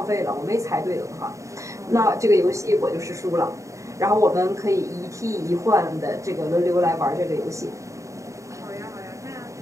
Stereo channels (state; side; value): late; left; 0.15 ms